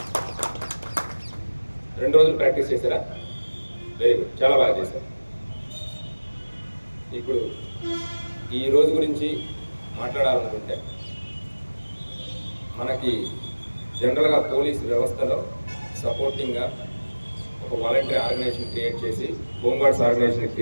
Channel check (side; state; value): both; inverted; correlation -1.00